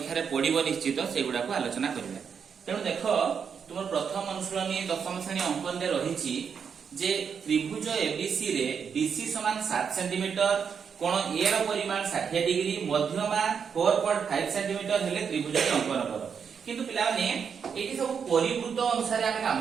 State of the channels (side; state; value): left; quieter; 6.7 dB